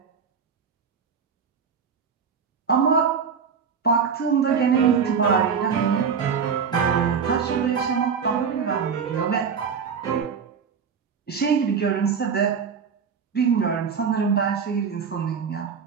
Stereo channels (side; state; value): left; quieter; 6.4 dB